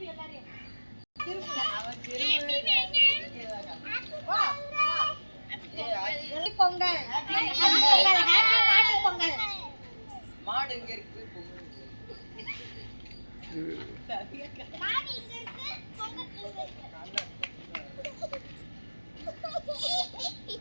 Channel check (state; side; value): inverted; both; correlation -1.00